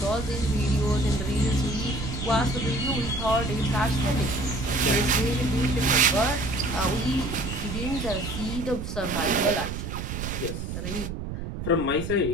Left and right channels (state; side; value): noise; right; rumble, 6 dB below the sound